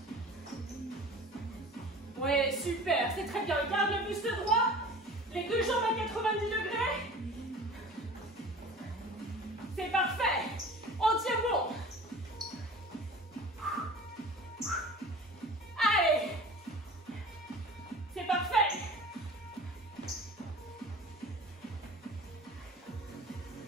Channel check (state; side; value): normal; both; correlation 0.41